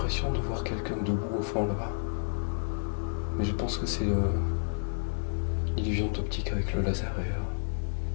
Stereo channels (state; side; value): silent; right; digital silence